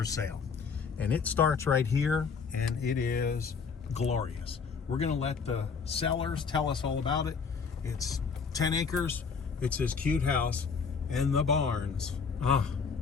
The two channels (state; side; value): quieter; right; 5.6 dB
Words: sale. And it starts right here, and it is glorious. We're gonna let the sellers tell us all about it. It's 10 acres. It's this cute house and the barns.